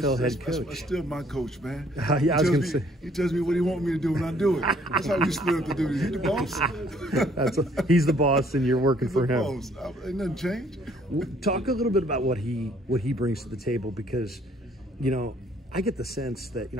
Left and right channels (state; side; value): normal; both; correlation 0.62